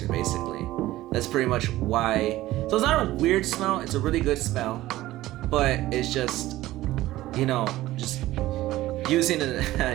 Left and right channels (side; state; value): left; quieter; 16.2 dB